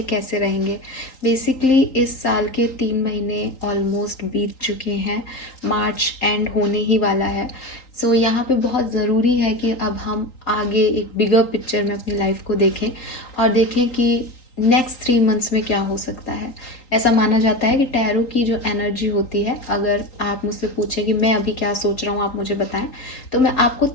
कैसे रहेंगे। बेसिकली इस साल के 3 महीने ऑलमोस्ट बीत चुके हैं, मार्च एंड होने ही वाला है। सो यहाँ पे बहुत ज़रूरी है कि अब हम आगे एक बिगर पिक्चर में अपनी लाइफ को देखें और देखें कि नेक्स्ट 3 मंथ्स में क्या हो सकता है। ऐसा माना जाता है कि टैरो की जो एनर्जी होती है, अगर आप मुझसे पूछें कि मैं अभी क्या सोच रहा हूँ आप मुझे बताएं, तो मैं आपको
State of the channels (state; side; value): late; right; 3.8 ms